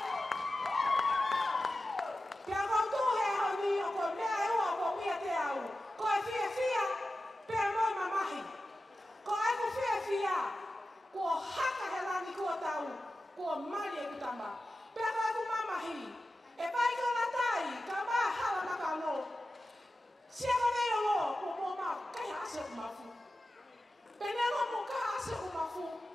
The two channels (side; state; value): both; normal; correlation 0.93